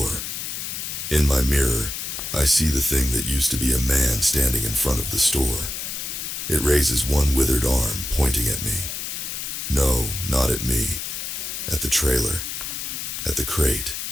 In my mirror, I see the thing that used to be a man standing in front of the store. It raises one withered arm, pointing at me. No, not at me. At the trailer. At the crate.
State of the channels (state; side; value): noise; left; hiss, 5 dB below the sound